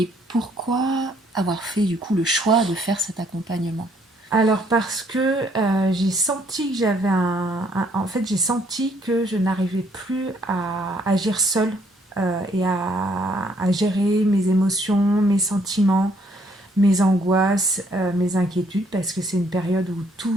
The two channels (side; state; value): both; normal; correlation 0.66